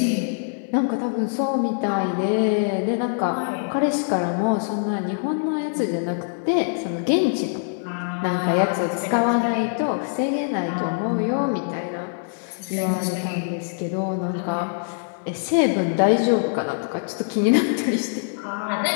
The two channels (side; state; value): right; silent; digital silence